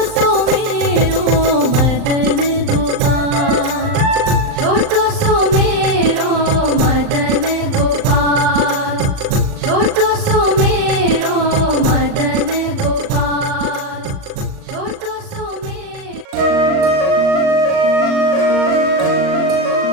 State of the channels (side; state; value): left; late; 39 ms